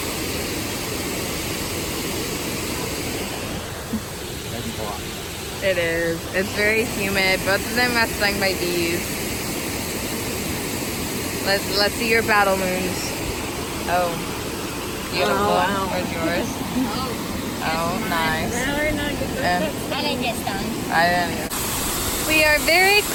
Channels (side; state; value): both; identical; correlation 1.00